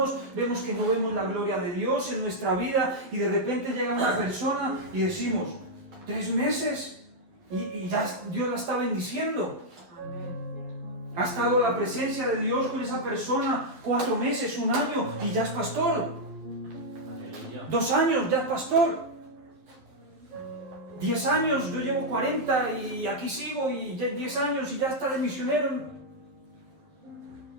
vemos que no vemos la gloria de Dios en nuestra vida, y de repente llega una persona y decimos, 3 meses y ya Dios la está bendiciendo. Ha estado la presencia de Dios con esa persona 4 meses, 1 año y ya es pastor. Aleluya. 2 años, ya es pastor. 10 años, yo llevo 40 y aquí sigo, y 10 años y ya está de misionero.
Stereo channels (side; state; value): left; late; 11 ms